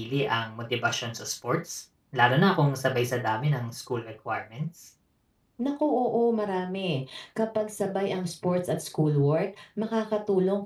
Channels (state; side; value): identical; both; correlation 1.00